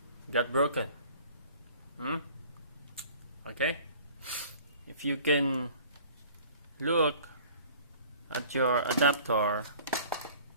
got broken. Okay, if you can look at your adapter,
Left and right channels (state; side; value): inverted; both; correlation -0.49